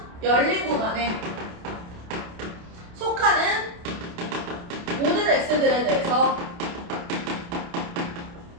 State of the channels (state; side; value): late; left; 28 ms